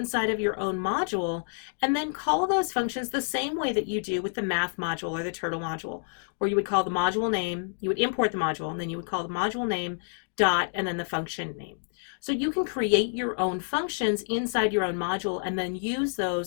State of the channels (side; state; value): right; silent; digital silence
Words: of your own module and then call those functions the same way that you do with the math module or the turtle module, where you would call the module name, you would import the module, and then you would call the module name dot and then the function name. So you can create your own functions inside your own module and then use